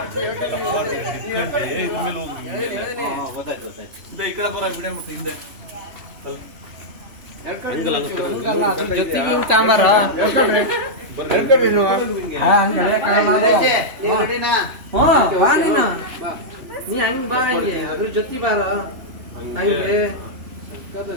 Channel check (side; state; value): left; late; 3.0 ms